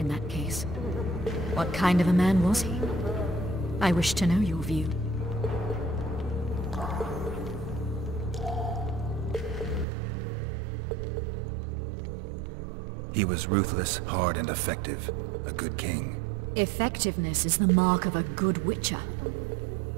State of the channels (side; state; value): left; drops out; at 9.9 s